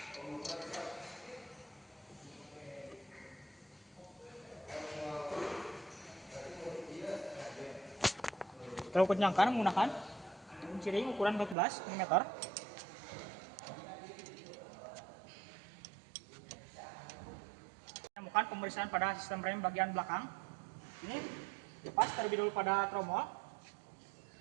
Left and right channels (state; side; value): drops out; left; at 11.6 s